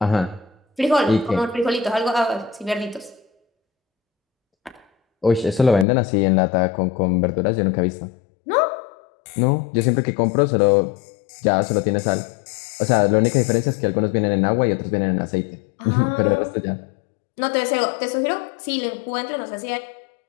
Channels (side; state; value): right; drops out; at 5.9 s